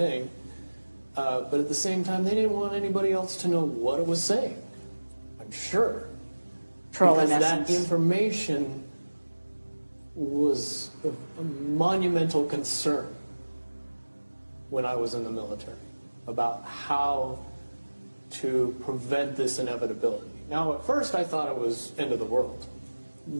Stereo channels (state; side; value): inverted; both; correlation -1.00